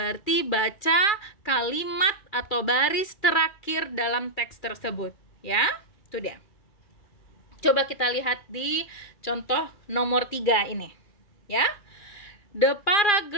baca kalimat atau baris terakhir dalam teks tersebut. Ya, itu dia. Coba kita lihat di contoh nomor 3 ini, ya. The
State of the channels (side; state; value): right; late; 2.4 ms